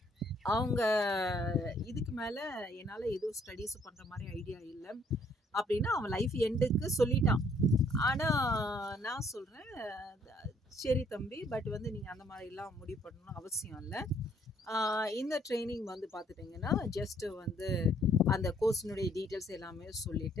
அவங்க இதுக்கு மேலே என்னால் எதுவும் ஸ்டடீஸ் பண்ணுற மாதிரி ஐடியா இல்லை அப்படின்னு அவன் லைஃப் எண்டுக்கு சொல்லிட்டான். ஆனால் நான் சொல்கிறேன், சரி தம்பி, பட் வந்து நீங்கள் அந்த மாதிரிலாம் முடிவு பண்ணணும்னு அவசியம் இல்லை. இந்த ட்ரைனிங் வந்து பார்த்துட்டிங்கன்னா ஜஸ்ட்டு வந்து அந்த கோர்ஸினுடைய டீட்டெயில்ஸ் எல்லாமே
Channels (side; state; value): both; normal; correlation 0.65